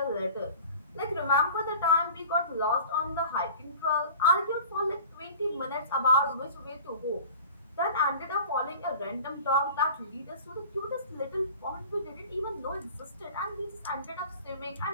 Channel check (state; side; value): inverted; both; correlation -0.42